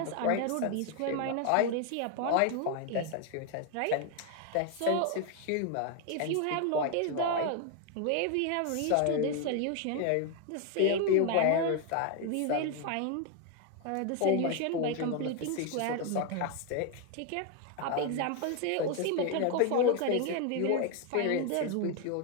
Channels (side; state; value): both; different; correlation 0.01